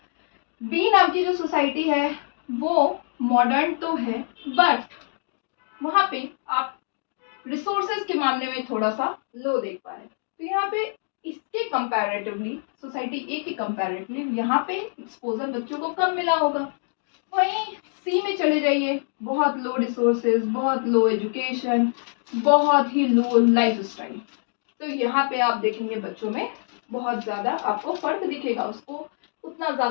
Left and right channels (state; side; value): silent; right; digital silence